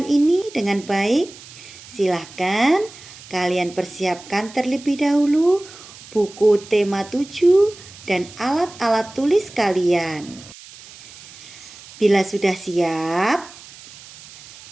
ini dengan baik, silahkan kalian persiapkan terlebih dahulu buku tema 7 dan alat-alat tulis kalian. Bila sudah siap,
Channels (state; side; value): noise; right; hiss, 19 dB below the sound